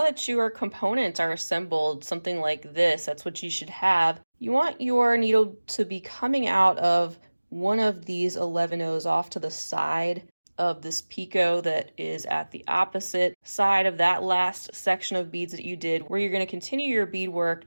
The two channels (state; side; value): inverted; both; correlation -1.00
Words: that your components are assembled, something like this, that's what you should have. You want your needle to be coming out of one of these 11 O's off to the side of this picot that is at the opposite side of that last section of beads that you did, where you're going to continue your beadwork